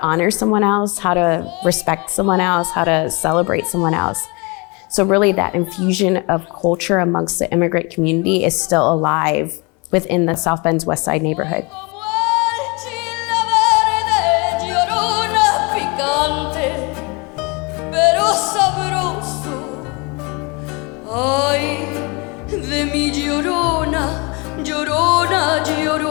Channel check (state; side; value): quieter; right; 29.0 dB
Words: honor someone else, how to respect someone else, how to celebrate someone else? So really that infusion of culture amongst the immigrant community is still alive within the South Bend's West Side neighborhood. Ay, de mi llorona, llorona,